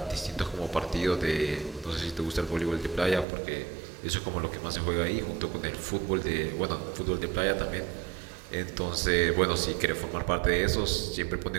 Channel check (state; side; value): drops out; left; at 3.2 s